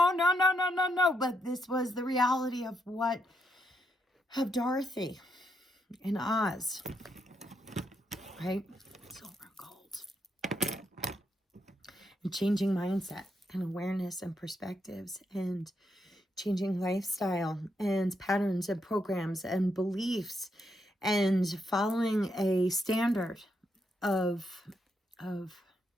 no, no, no, no, no. But this was the reality of Dorothy in Oz, right? Silver and gold. And changing mindset and awareness and perspectives and changing lifestyle and patterns and programs and beliefs and following a standard of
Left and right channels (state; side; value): normal; both; correlation 0.79